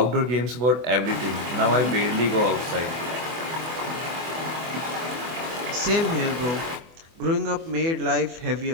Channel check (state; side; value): late; left; 24 ms